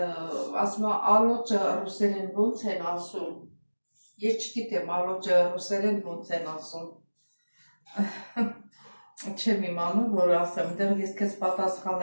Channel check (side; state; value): both; inverted; correlation -1.00